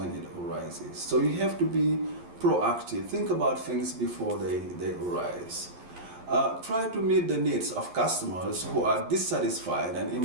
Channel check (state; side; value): late; left; 11 ms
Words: it arises. So you have to be proactive. Think about things before they arise. Try to meet the needs of customers who are dissatisfied and